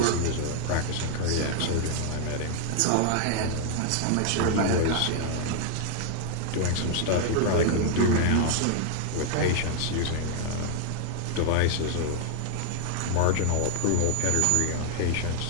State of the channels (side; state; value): both; different; correlation 0.00